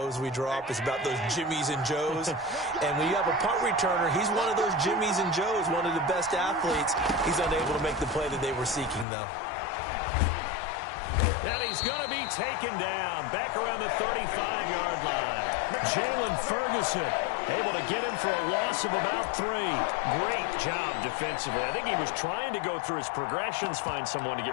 we draw up. It's about those Jimmies and Joes. And when you have a punt returner, he's one of those Jimmies and Joes, one of the best athletes. He's unable to make the play that they were seeking, though. And he's going to be taken down back around the 35-yard line. Jalen Ferguson Able to get him for a loss of about 3. Great job defensively. I think he was trying to go through his progressions, find someone to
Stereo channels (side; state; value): right; drops out; at 9.1 s